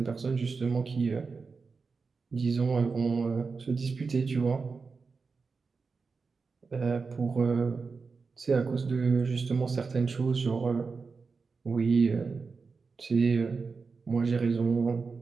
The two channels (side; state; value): left; quieter; 4.7 dB